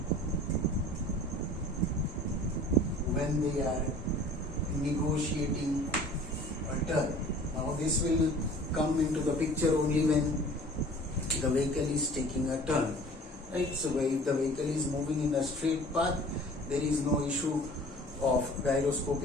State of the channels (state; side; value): normal; both; correlation 0.46